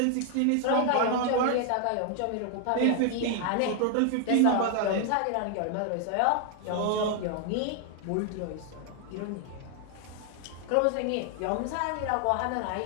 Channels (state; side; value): different; both; correlation 0.00